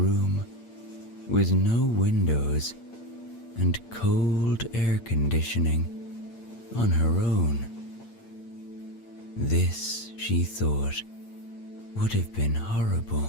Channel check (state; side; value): late; right; 8.7 ms